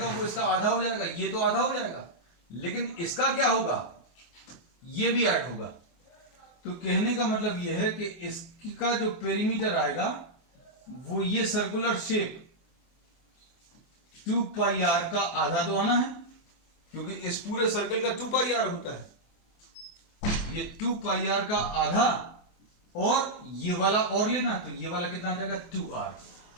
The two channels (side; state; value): right; late; 24 ms